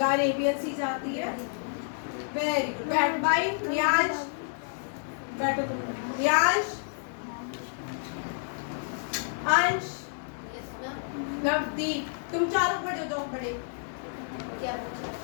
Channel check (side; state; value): right; silent; 58 dB below the other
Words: Arabian sea जाती है, वेरी गुड। बैठ भाई, रियाज बैठो तुम। रियाज, अंश, नवदीप, तुम चारों खड़े हो जाओ, खड़े।